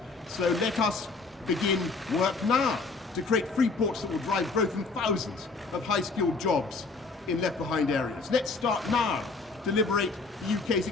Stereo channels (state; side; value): quieter; right; 4.0 dB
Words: So let us begin work now to create free ports that will drive growth in thousands of high-skilled jobs in left-behind areas. Let's start now to liberate the UK's